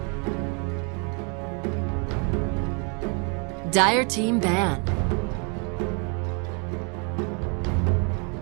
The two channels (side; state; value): left; quieter; 36.3 dB